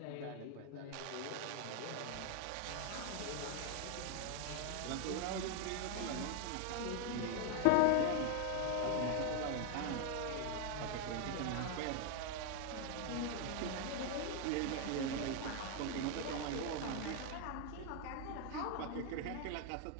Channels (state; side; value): different; both; correlation 0.00